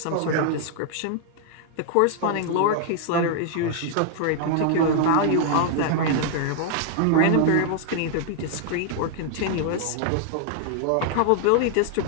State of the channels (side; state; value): both; different; correlation 0.00